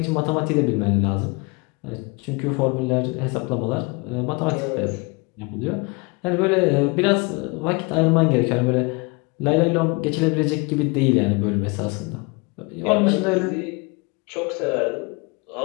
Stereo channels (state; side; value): quieter; right; 28.9 dB